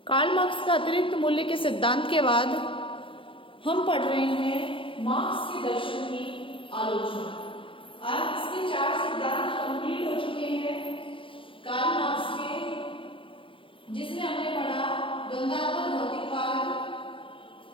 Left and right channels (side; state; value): right; late; 0.25 ms